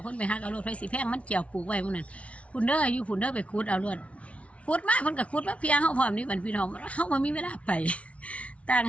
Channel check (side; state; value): right; late; 0.063 ms